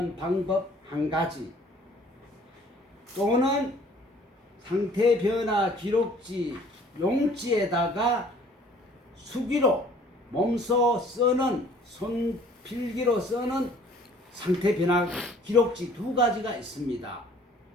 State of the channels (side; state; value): both; normal; correlation 0.54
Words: 방법 한 가지, 또는 상태 변화 기록지 용지에다가 수기로 몸소 쓰는 손필기로 쓰는 상태 변화 기록지 두 가지가 있습니다.